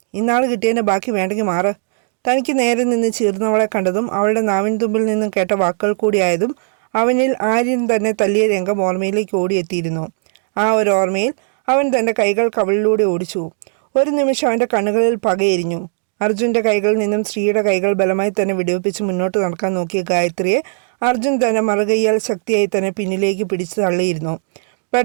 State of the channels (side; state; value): left; silent; digital silence